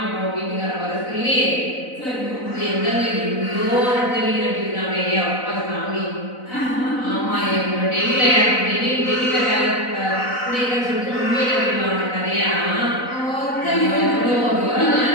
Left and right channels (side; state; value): right; late; 4.0 ms